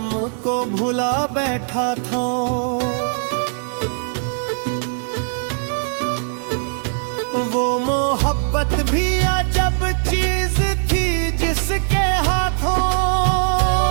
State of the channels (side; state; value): left; silent; digital silence